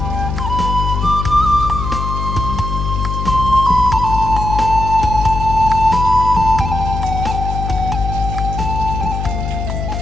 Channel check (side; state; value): left; noise; hum, 3 dB below the sound